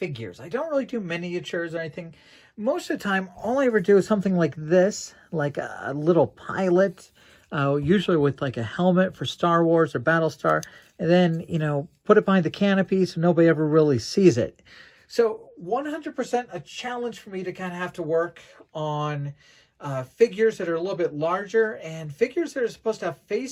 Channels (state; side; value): identical; both; correlation 1.00